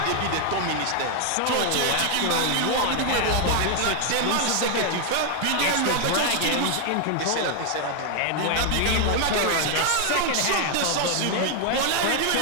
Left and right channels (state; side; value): different; both; correlation 0.00